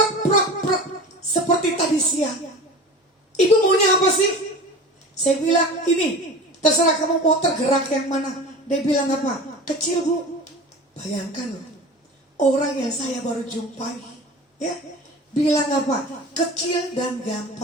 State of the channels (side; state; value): both; normal; correlation 0.35